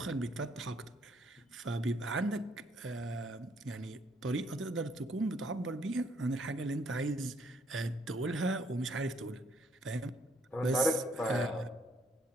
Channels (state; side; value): normal; both; correlation 0.68